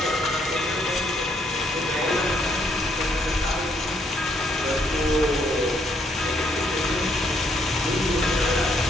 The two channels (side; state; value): both; normal; correlation 0.71